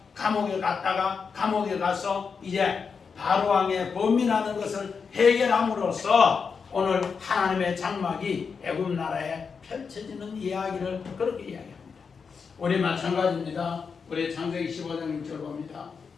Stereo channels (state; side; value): quieter; right; 5.7 dB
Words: 감옥에 갔다가 감옥에 가서 이제 바로왕의 범민하는 것을 해결함으로써 오늘 하나님의 장막이 애굽 나라에 펼쳐지는 이야기를 그렇게 이야기합니다. 우리 마찬가지입니다. 우리 창세기 15장 1절 봅니다.